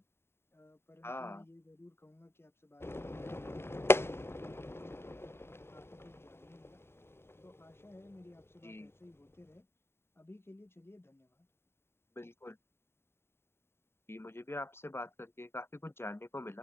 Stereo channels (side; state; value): right; late; 0.12 ms